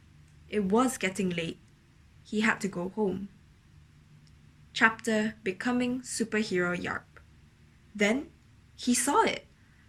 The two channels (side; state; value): both; identical; correlation 1.00